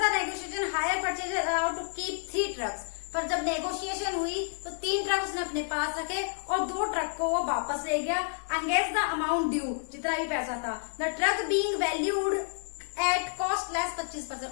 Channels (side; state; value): right; silent; 57 dB below the other